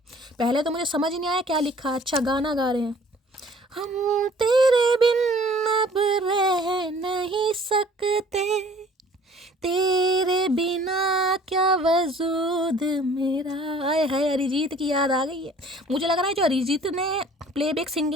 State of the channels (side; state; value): both; normal; correlation 0.53